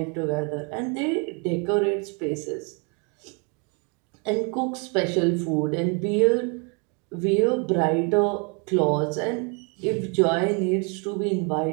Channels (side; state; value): left; quieter; 34.9 dB